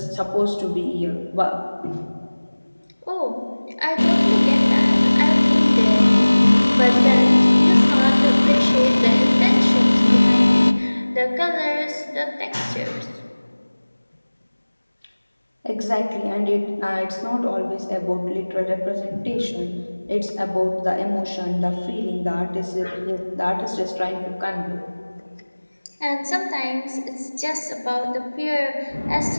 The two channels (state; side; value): inverted; both; correlation -1.00